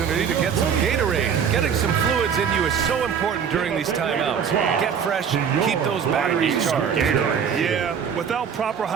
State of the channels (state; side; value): quieter; left; 7.3 dB